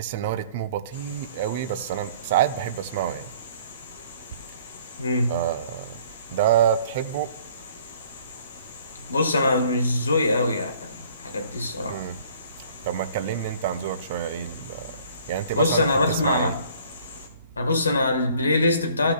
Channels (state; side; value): inverted; both; correlation -0.55